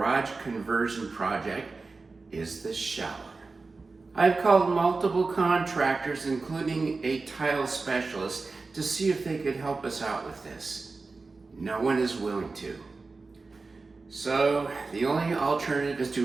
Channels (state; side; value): quieter; left; 3.9 dB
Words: conversion project is the shower. I've called multiple contractors, including a tile specialist, to see if they could help us out with this. No one is willing to. So the only alternative is